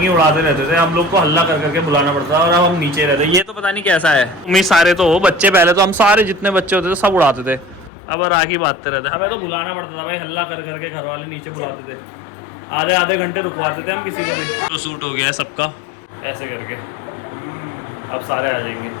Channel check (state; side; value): drops out; right; at 7.9 s